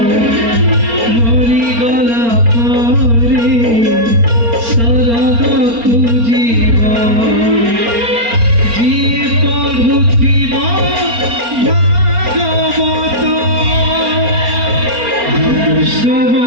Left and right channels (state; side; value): late; left; 4.3 ms